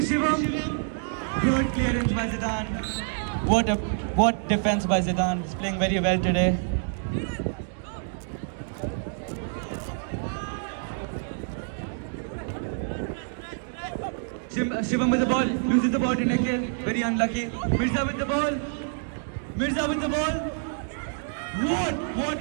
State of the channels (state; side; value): silent; left; digital silence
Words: Shivam. Good clearance by Zidane. What defense by Zidane. He's playing very well today. Shivam with the ball, loses the ball to Nikhil, very unlucky. Mirza with the ball. Mirza with the ball. What